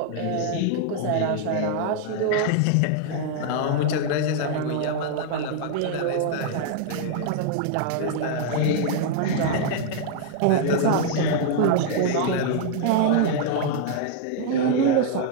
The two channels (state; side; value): different; both; correlation 0.00